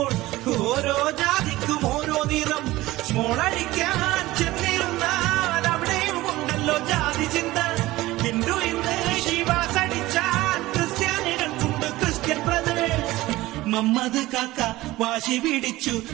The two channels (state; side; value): quieter; left; 18.0 dB